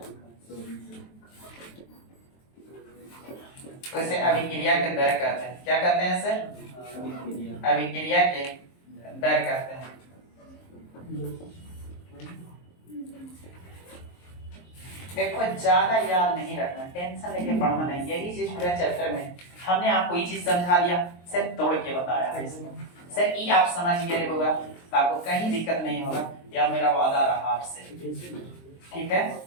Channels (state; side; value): late; right; 23 ms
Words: उसे अभिक्रिया के दर कहते हैं। क्या कहते हैं सर, अभिक्रिया के दर कहते हैं। देखो ज्यादा याद नहीं रखना, टेंशन लेके पढ़ना नहीं, यही चीज पूरा चैप्टर में हमने आपको ये चीज समझा दिया, सिर्फ तोड़ के बताया है इसमें। सर ये आप समझ गए होगा तो आपको कहीं दिक्कत नहीं होगा, या मेरा वादा रहा आपसे। ठीक है,